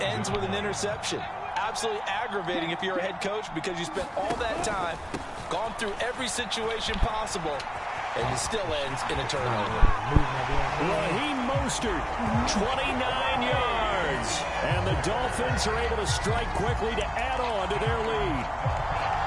ends with an interception. Absolutely aggravating if you're a head coach because you spent all that time, gone through every situation possible, and it still ends in a turnover. Raheem Mostert, 29 yards. And the Dolphins are able to strike quickly to add on to their lead.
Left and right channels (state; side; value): identical; both; correlation 1.00